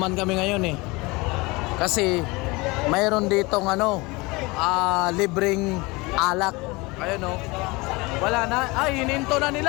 kami ngayon eh. Kasi mayroon ditong libreng alak. Ayun oh. Wala na, hininto na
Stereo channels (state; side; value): quieter; right; 24.3 dB